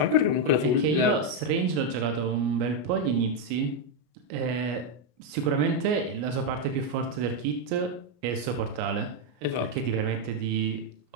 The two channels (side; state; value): left; late; 33 ms